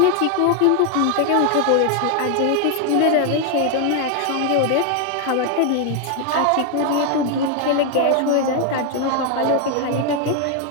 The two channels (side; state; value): both; different; correlation 0.01